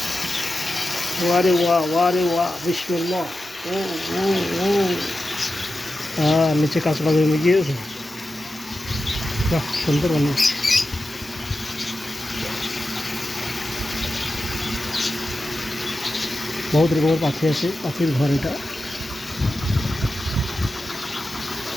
ওয়ারে ওয়া বিসমিল্লাহ। ও ও ও হ্যাঁ, নিচে কাঁচড়া জমে গিয়েছে। বাহ, সুন্দর অনেক। বহুত রকমের পাখি আছে, পাখির ঘর এটা।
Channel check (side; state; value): both; normal; correlation 0.92